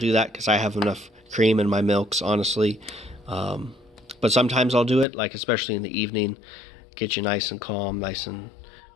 that because I have enough cream in my milks, honestly. But sometimes I'll do it, like especially in the evening, get you nice and calm, nice and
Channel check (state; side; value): drops out; right; at 5.1 s